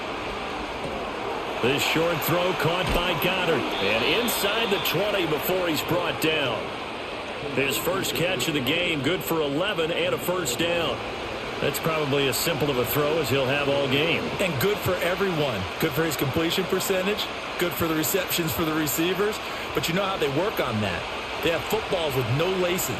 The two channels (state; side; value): identical; both; correlation 1.00